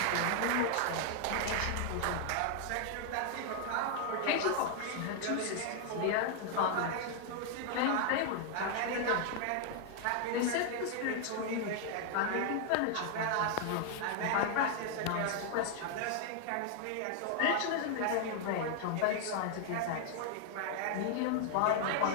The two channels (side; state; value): both; different; correlation 0.00